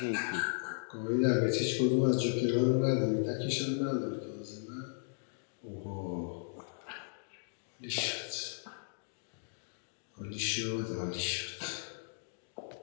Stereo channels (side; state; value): right; silent; digital silence